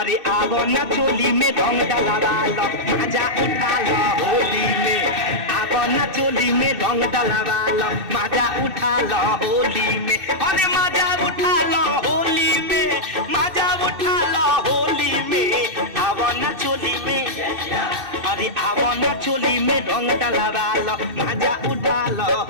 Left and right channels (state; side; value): late; left; 2.7 ms